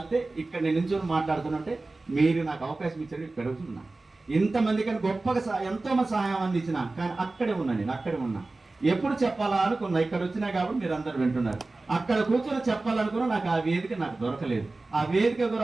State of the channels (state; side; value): quieter; left; 3.3 dB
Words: ఇక్కడ నేను నించొని మాట్లాడుతున్నట్టే మీరు నాకు అవకాశం ఇచ్చారు, ఇక్కడ పెరుగుతున్నా. ఇంతమంది కానీ గొప్పగా ఎంతో మంది సహాయం అందించిన, కానీ అక్కడే ఉన్నా, నేను అక్కడే ఉన్నా. ఎప్పుడు చెప్పాలా అనుకున్నా, ఇక్కడ వచ్చినా కాబట్టి మీరు అందరు వింటున్నారు. అక్కడ కూర్చొని చెప్పాలనుకున్నా, నాకు ఆ వేదిక నాకు దొరకలేదు. ఆ వేదిక